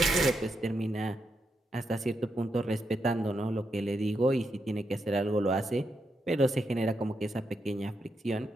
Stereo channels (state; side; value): normal; both; correlation 0.83